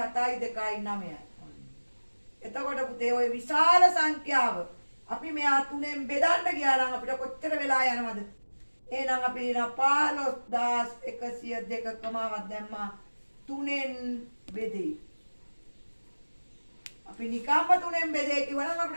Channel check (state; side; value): inverted; both; correlation -1.00